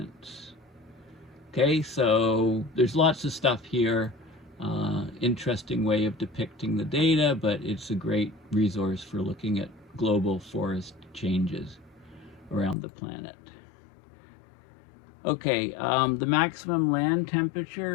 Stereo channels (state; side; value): drops out; right; at 12.8 s